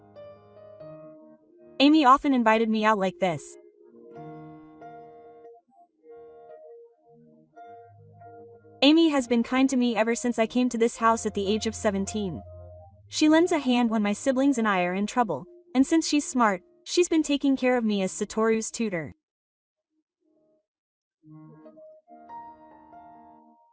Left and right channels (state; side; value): identical; both; correlation 1.00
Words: Amy often invited me out like this. Amy has been kind to me ever since I came to this house at the age of 17. She lends a hand when my siblings and I are in trouble, and since she's smart, she's been taking care of me as Satoru's tutor.